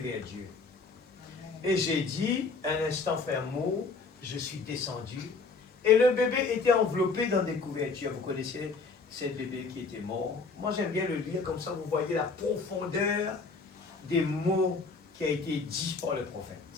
Dieu. Et j'ai dit, un instant, Frère Moore, je suis descendu, et le bébé était enveloppé dans des couvertures. Vous connaissez ce bébé qui était mort. Moi, j'aime bien le lire, comme ça vous voyez la profondeur des mots qui a été dit par le prophète.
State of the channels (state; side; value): quieter; right; 4.3 dB